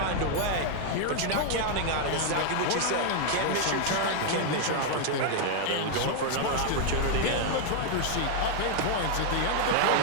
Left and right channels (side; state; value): both; different; correlation 0.00